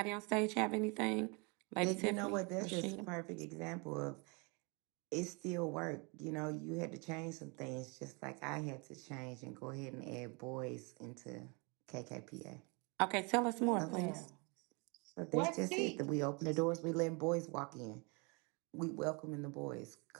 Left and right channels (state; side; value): quieter; left; 31.0 dB